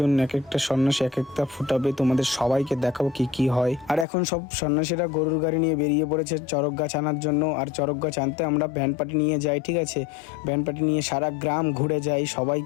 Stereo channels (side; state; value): right; drops out; at 4.0 s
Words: এক একটা সন্ন্যাসী এক একটা ফুটাবে, তোমাদের সবাইকে দেখাবো কি কি হয়। আর এখন সব সন্ন্যাসীরা গরুর গাড়ি নিয়ে বেরিয়ে পড়েছে চড়ক গাছ আনার জন্য। আর চড়ক গাছ আনতে আমরা ব্যান্ড পার্টি নিয়ে যাই, ঠিক আছে। ব্যান্ড পার্টি নিয়ে সারা গ্রাম ঘুরে যাই,